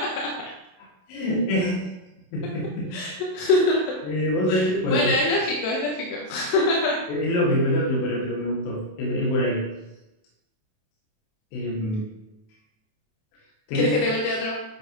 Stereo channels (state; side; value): late; right; 27 ms